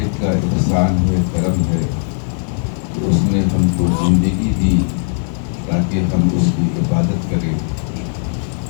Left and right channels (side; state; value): right; silent; digital silence